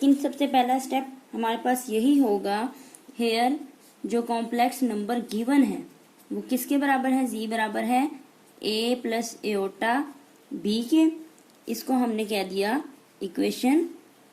सबसे पहला स्टेप हमारे पास यही होगा, हेयर जो कॉम्प्लेक्स नंबर गिवन है वो किसके बराबर है, z बराबर है a प्लस एओटा b के। इसको हमने कह दिया इक्वेशन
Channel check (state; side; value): identical; both; correlation 1.00